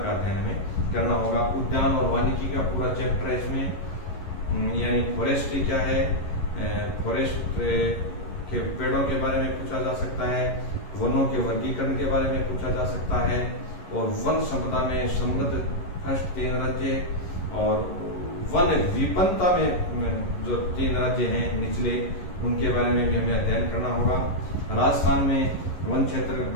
का अध्ययन हमें करना होगा। उद्यान और वानिकी का पूरा चैप्टर है इसमें, यानी फॉरेस्ट्री क्या है, फॉरेस्ट के पेड़ों के बारे में पूछा जा सकता है, वनों के वर्गीकरण के बारे में पूछा जा सकता है, और वन संपदा में समृद्ध फर्स्ट 3 राज्य और वन विपन्नता में जो 3 राज्य हैं निचले, उनके बारे में भी हमें अध्ययन करना होगा। राजस्थान में वन क्षेत्र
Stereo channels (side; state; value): right; late; 11 ms